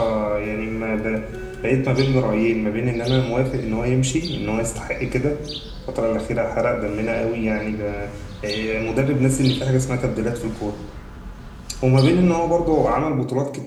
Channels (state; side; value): identical; both; correlation 1.00